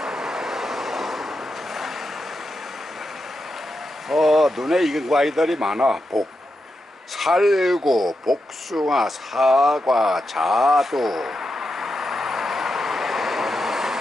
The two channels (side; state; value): both; normal; correlation 0.87